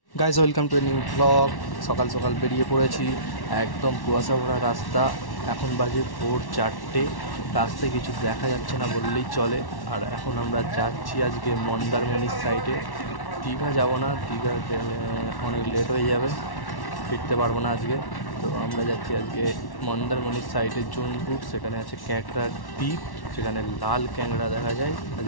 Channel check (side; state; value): right; late; 1.1 ms